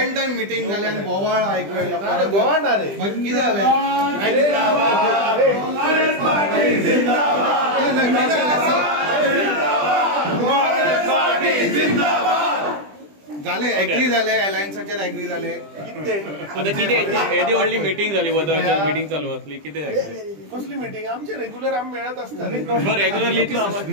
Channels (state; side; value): late; left; 20 ms